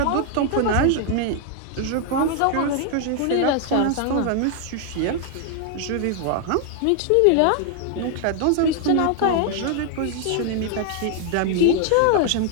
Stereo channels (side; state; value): both; different; correlation 0.00